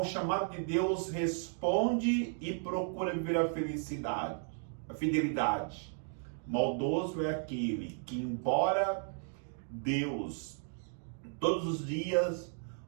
chamado de Deus responde e procura viver a felicidade, a fidelidade. Maldoso é aquele que, embora Deus todos os dias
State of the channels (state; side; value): silent; left; 55 dB below the other